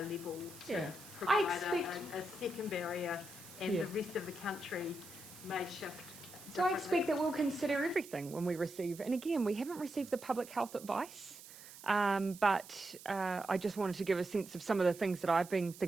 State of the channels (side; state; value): right; noise; hiss, 17 dB below the sound